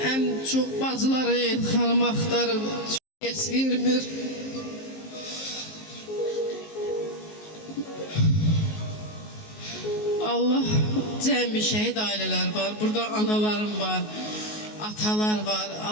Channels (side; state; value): right; late; 19 ms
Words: ən çox bacıları Elxanımı axtarır. Heç vermir. Allah cəmi şəhid ailələr var. Burada analarım var, atalar var.